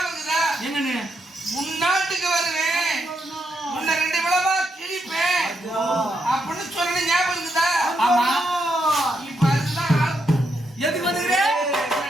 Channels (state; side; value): normal; both; correlation 0.80